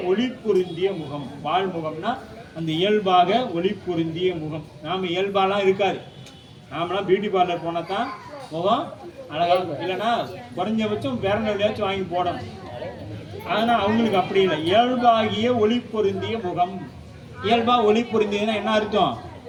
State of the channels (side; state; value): both; identical; correlation 1.00